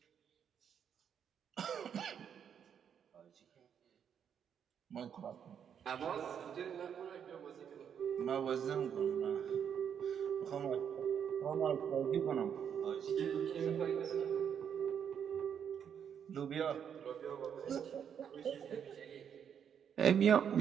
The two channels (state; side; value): quieter; left; 8.1 dB